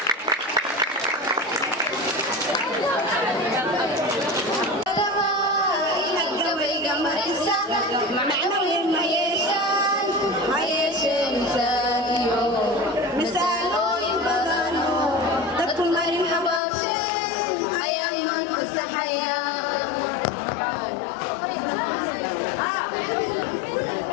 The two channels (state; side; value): drops out; right; at 16.6 s